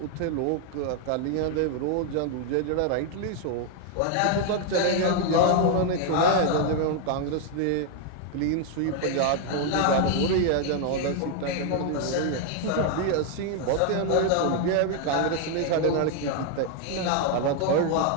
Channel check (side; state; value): both; different; correlation 0.00